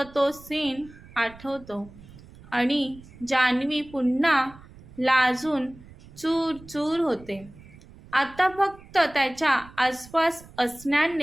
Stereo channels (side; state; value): right; noise; rumble, 21 dB below the sound